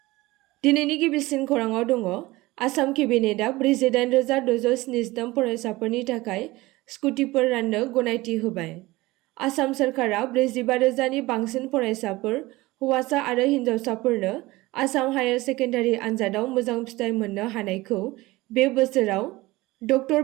दिनैनि गिबिसिन खौराङाव दङ आसाम केबिनेटआ 48,673 फरायसाफोरनि थाखाय स्कुटिफोर राननो गनायथि होबाय। आसाम सोरखारा 45,000 नि बांसिन फरायसाफोर हौवासा आरो हिन्जावसाफोरनो आसाम हायार सेकेन्डारि आनजादाव मोजां फिथाइ मोननो हानायखौ बे बोसोराव डक्टर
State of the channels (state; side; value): quieter; left; 20.0 dB